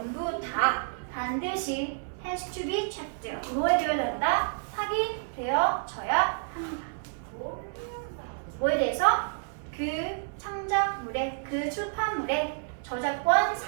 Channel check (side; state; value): left; silent; 58 dB below the other